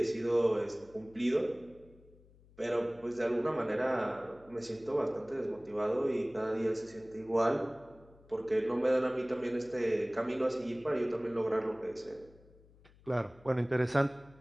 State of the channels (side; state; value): left; noise; hum, 26 dB below the sound